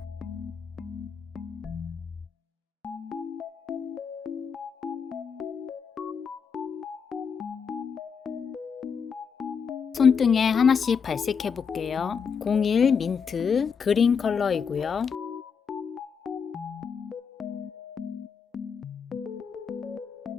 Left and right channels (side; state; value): right; quieter; 6.3 dB